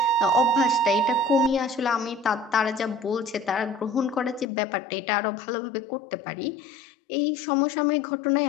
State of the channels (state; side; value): drops out; right; at 4.5 s